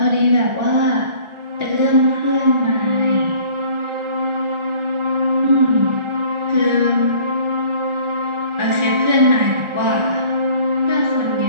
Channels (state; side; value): late; left; 1.4 ms